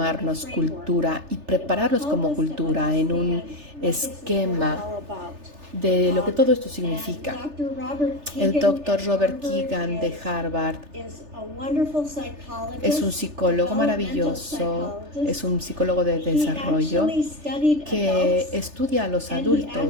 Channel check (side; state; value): left; late; 3.3 ms